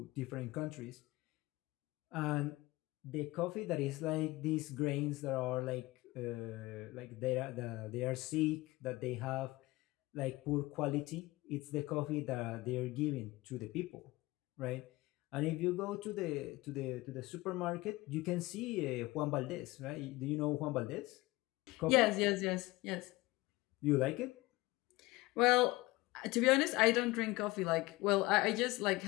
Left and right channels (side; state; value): right; quieter; 20.4 dB